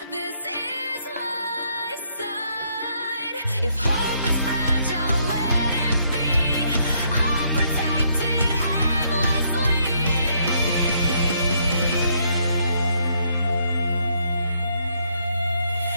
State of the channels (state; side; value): inverted; both; correlation -0.71